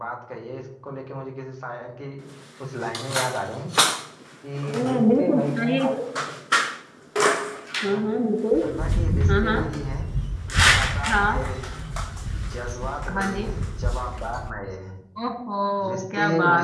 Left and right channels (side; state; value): both; identical; correlation 1.00